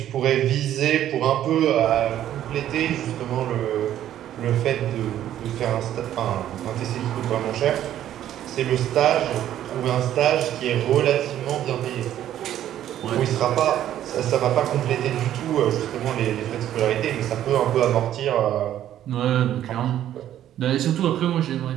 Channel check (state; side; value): quieter; left; 11.7 dB